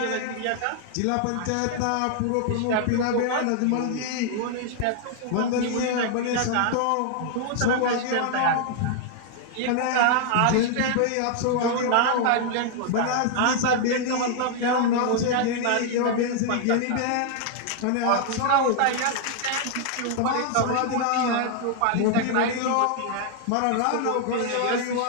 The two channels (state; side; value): different; both; correlation 0.00